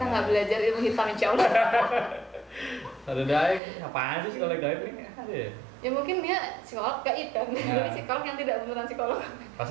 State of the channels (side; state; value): left; drops out; at 3.6 s